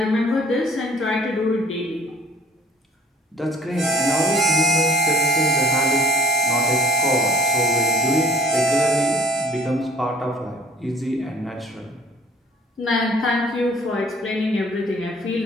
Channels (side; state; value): both; normal; correlation 0.54